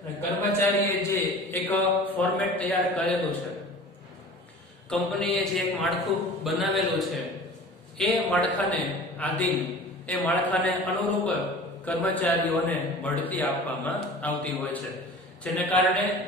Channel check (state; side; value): normal; both; correlation 0.41